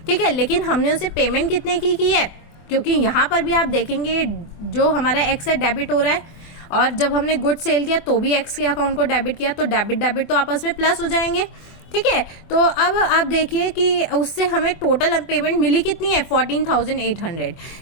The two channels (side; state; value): right; late; 24 ms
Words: ठीक है, लेकिन हमने उसे पेमेंट कितने की है, क्योंकि यहाँ पर भी आप देखेंगे जो हमारा एक्स है डेबिट हो रहा है, और जब हमने गुड सेल किया तो भी एक्स के अकाउंट को डेबिट किया, तो डेबिट तो आपस में प्लस हो जाएंगे। ठीक है, तो अब आप देखिए कि उससे हमें टोटल पेमेंट मिली कितनी है, 14,800।